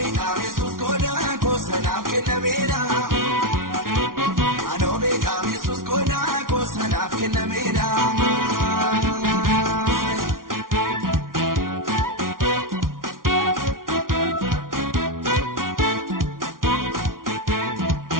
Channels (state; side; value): late; left; 0.91 ms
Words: kamesus koda kosanaf kinameda Anobe kamesus koda kosanaf kinameda